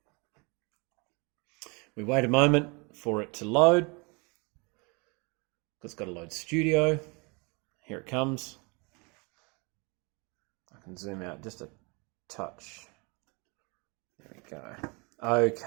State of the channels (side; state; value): left; quieter; 30.2 dB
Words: We wait a moment for it to load. It's got to load Studio. Here it comes. I can zoom out just a touch. There we go.